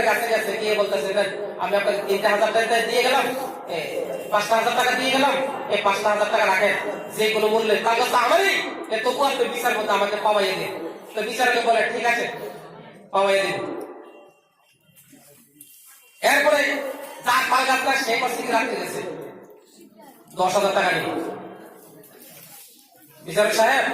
কাছে গেছে, গিয়ে বলতেছে, আমি আপনাকে 3,000 টাকা দিয়ে গেলাম, 5,000 টাকা দিয়ে গেলাম, এই 5,000 টাকা রাখেন, যে কোনো মূল্যে তাল গাছটা আমারই, তবু আপনি বিচার করতে আমাকে পাওয়াইয়ে দিন। তো বিচারকে বলে, ঠিক আছে পাওয়াইয়ে দিন। এরপরে যার তাল গাছটা সে করছে কি, রাখতে গেছে 10,000 টাকা নিয়ে। বিচারক সাহেব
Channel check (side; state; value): both; identical; correlation 1.00